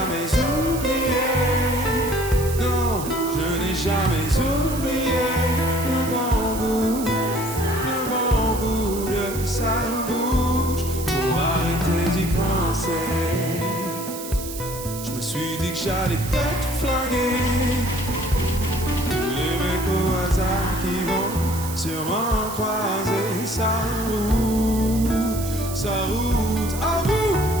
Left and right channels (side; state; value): right; noise; hiss, 10 dB below the sound